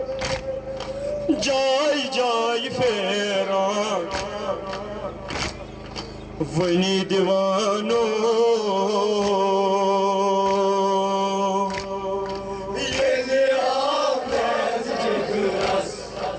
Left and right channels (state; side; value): identical; both; correlation 1.00